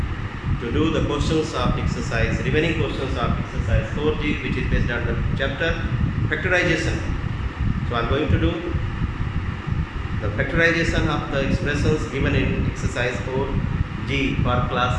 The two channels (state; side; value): identical; both; correlation 1.00